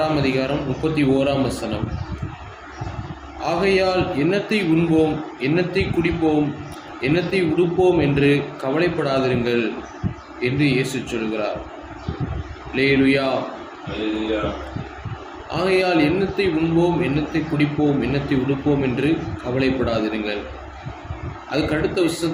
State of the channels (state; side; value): identical; both; correlation 1.00